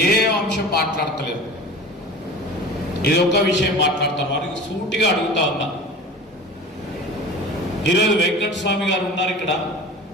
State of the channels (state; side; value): normal; both; correlation 0.37